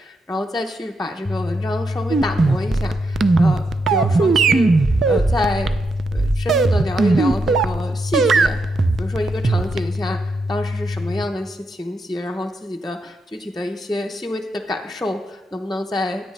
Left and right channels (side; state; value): both; normal; correlation 0.82